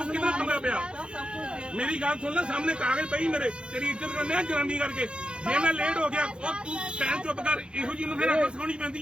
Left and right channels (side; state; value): left; late; 0.054 ms